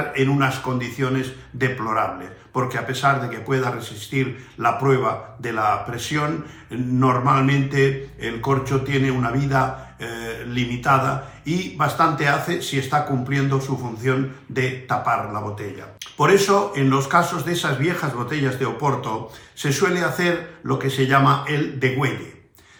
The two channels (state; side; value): identical; both; correlation 1.00